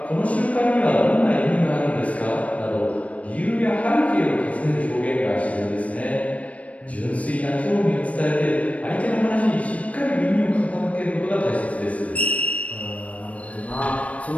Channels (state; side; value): late; right; 0.066 ms